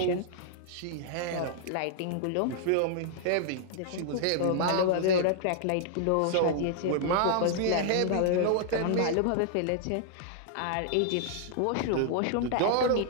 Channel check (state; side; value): different; both; correlation -0.01